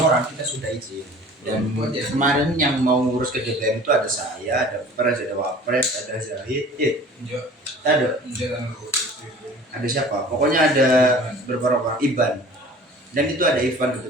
kita sudah izin. Dan kemarin yang mau ngurus ke DPM itu ada saya, ada Pres, ada Wapres, ada Zahid, ada siapa? Pokoknya ada beberapa orang, Iban. Dan itu ada Ivan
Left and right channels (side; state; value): both; normal; correlation 0.45